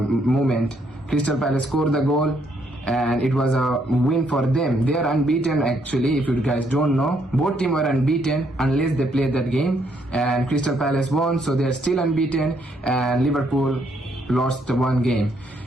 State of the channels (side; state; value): both; normal; correlation 0.72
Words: Crystal Palace scored the goal and it was a win for them. They are unbeaten actually. If you guys don't know, both teams were unbeaten unless they played that game, and Crystal Palace won, so they are still unbeaten, and Liverpool lost the one game.